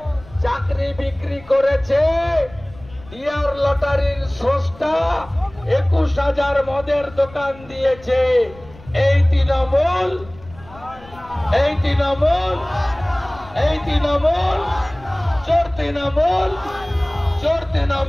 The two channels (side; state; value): left; noise; rumble, 21 dB below the sound